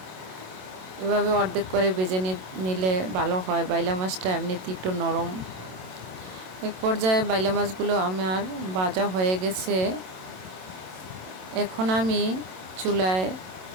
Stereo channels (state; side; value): late; left; 27 ms